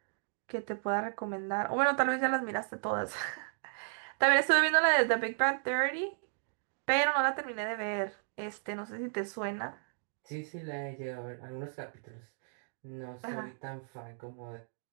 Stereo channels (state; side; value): silent; left; digital silence